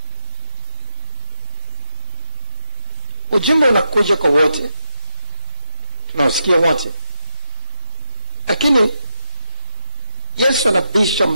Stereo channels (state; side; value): inverted; both; correlation -0.84